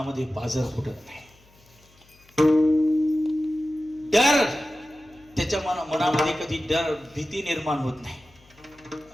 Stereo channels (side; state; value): left; noise; hum, 29 dB below the sound